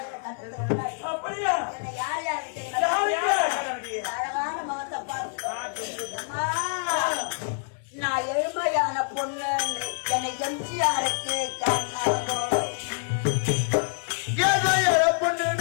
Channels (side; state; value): right; silent; 60 dB below the other